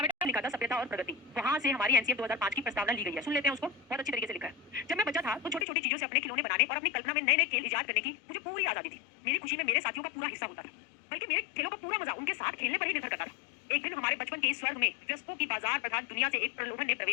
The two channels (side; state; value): right; drops out; at 5.7 s